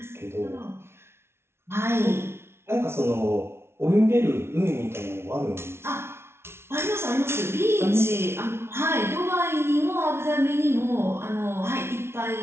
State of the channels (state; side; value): late; left; 0.12 ms